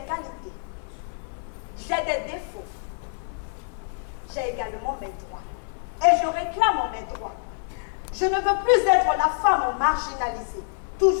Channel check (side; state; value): right; silent; 61 dB below the other